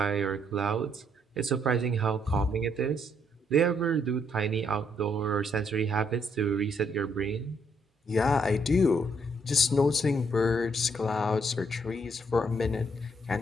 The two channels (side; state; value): both; normal; correlation 0.71